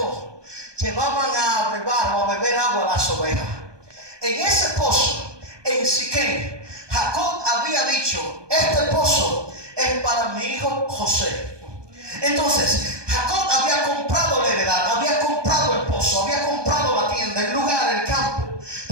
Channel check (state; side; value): late; left; 1.2 ms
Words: llevaban a brevar o a beber agua a las ovejas. En ese pozo, en Siquem, Jacob había dicho, este pozo es para mi hijo José. Entonces, Jacob había comprado la heredad, había comprado el pozo, había comprado la tienda, el lugar, el campo.